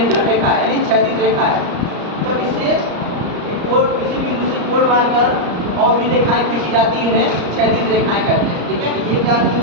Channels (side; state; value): left; late; 34 ms